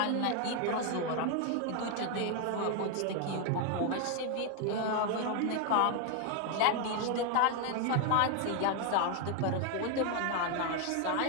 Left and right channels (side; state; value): both; different; correlation 0.00